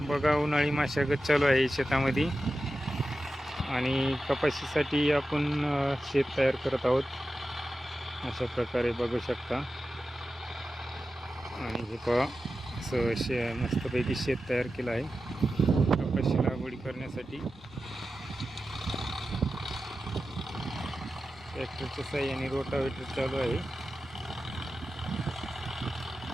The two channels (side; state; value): both; normal; correlation 0.92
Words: बघा, उन्हाळी मशागत चालू आहे शेतामध्ये आणि कपाशीसाठी आपण शेत तयार करत आहोत. अशा प्रकारे बघू शकता. आणि हे पहा, असं मस्तपैकी शेत तयार केलं आहे कपाशी लागवडी करण्यासाठी. ट्रॅक्टरच्या साहाय्याने रोटावेटर चालू आहे,